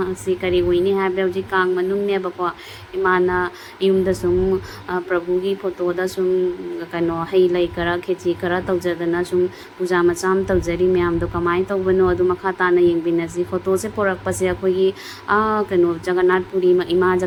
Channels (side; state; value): both; identical; correlation 1.00